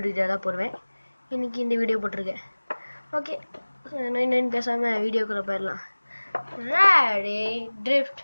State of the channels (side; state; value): both; inverted; correlation -1.00